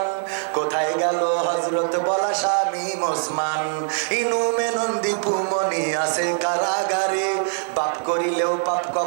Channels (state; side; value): silent; left; digital silence